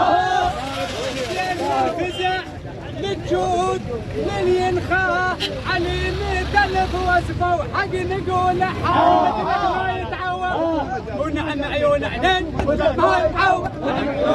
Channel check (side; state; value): both; identical; correlation 1.00